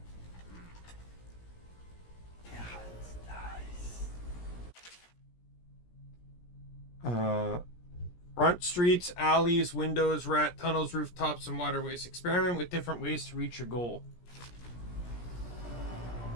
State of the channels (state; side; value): late; right; 17 ms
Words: Front streets, alleys, windows, rat tunnels, rooftops, and waterways. Experiment with different ways to reach your goal.